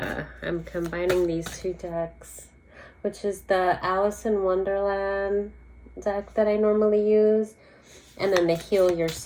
I'm combining these two decks, which is the Alice in Wonderland deck that I normally use, and then the Heal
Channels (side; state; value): both; identical; correlation 1.00